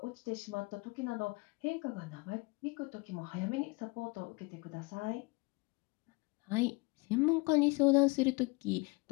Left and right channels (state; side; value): quieter; right; 27.2 dB